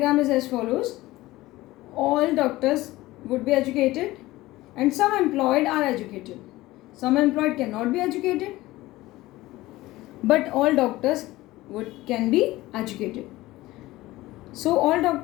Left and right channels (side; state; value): right; quieter; 18.0 dB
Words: is as follows, all doctors would be educated and some employed are educated. Some employed can not be educated but all doctors can be educated. So all